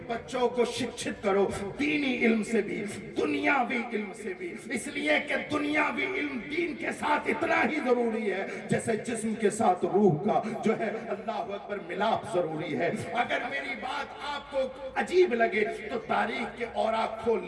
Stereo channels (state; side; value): identical; both; correlation 1.00